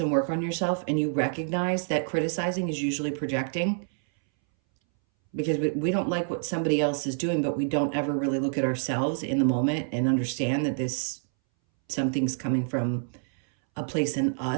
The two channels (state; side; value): silent; left; 60 dB below the other